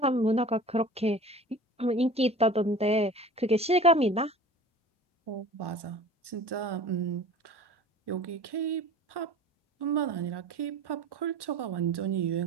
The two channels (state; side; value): normal; both; correlation 0.40